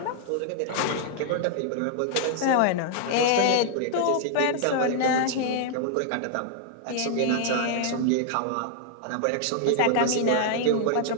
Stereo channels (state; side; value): different; both; correlation 0.00